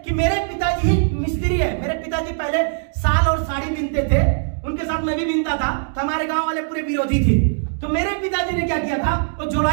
कि मेरे पिताजी ही मिस्त्री है। मेरे पिताजी पहले साल और साड़ी बीनते थे, उनके साथ मैं भी बीनता था, तो हमारे गांव वाले पूरे विरोधी थे। तो मेरे पिताजी ने क्या किया था, वो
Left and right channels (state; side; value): silent; left; digital silence